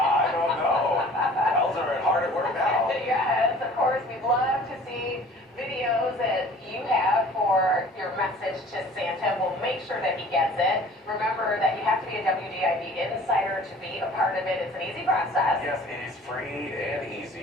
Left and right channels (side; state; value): both; normal; correlation 0.48